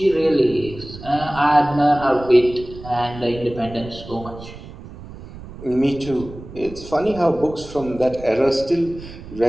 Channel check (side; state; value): right; noise; rumble, 15 dB below the sound